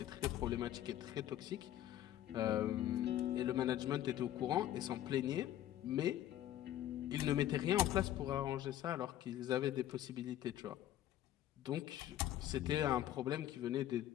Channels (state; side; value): quieter; right; 12.7 dB